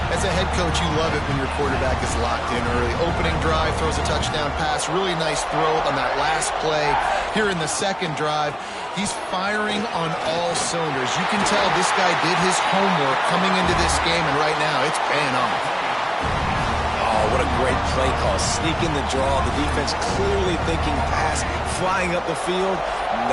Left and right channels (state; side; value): identical; both; correlation 1.00